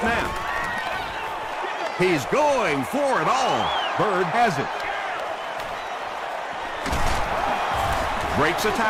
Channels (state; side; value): identical; both; correlation 1.00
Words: He's going for it all. Bird has it. Breaks a